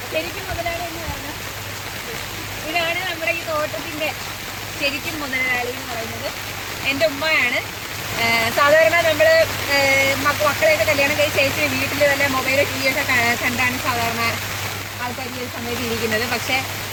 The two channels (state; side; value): identical; both; correlation 1.00